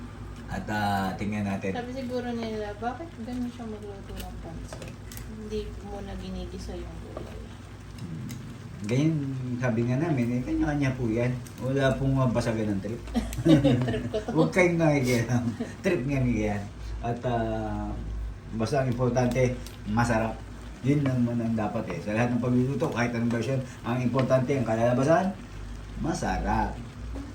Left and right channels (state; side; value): identical; both; correlation 1.00